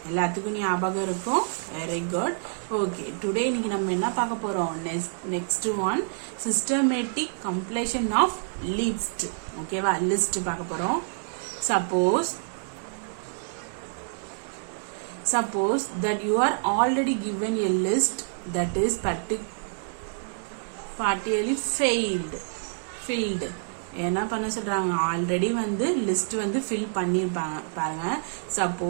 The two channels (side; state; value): left; silent; digital silence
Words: எல்லாத்துக்கும் ஞாபகம் இருக்கும். Very good. Okay. Today இன்னைக்கு நம்ம என்ன பார்க்க போறோம்? Next one systematic completion of list. ஓகேவா? லிஸ்ட் பார்க்க போறோம். Suppose that you are already given a list that is partially filled. என்ன பண்ண சொல்றாங்க? ஆல்ரெடி வந்து லிஸ்ட் வந்து ஃபில் பண்ணிருப்பாங்க பாருங்க.